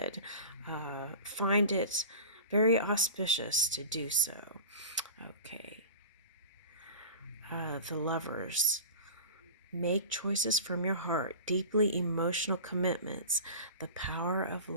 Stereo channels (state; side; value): inverted; both; correlation -0.34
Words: find it very auspicious to do so. Okay. The Lovers. Make choices from your heart, deeply emotional commitments, the power of